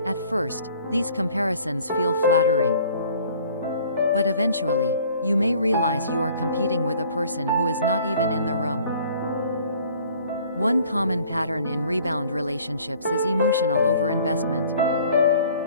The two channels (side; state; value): both; inverted; correlation -0.54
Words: At first, these comparisons feel flattering. But eventually, you may realize you are competing with a person who is not even in the room. One common pattern in rebound relationships is emotional overinvestment.